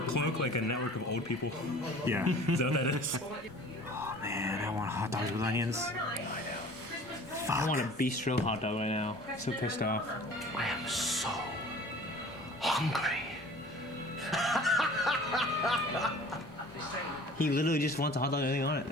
cloak like a network of old people? Yeah. Is that what that is? Oh man, I want hot dogs with onions. I want a bistro hot dog right now. So pissed off. I am so hungry. He literally just wants a hot dog with anything on it,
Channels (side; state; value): both; normal; correlation 0.46